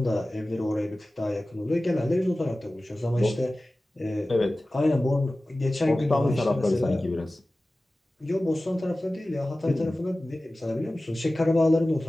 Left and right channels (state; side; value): normal; both; correlation 0.96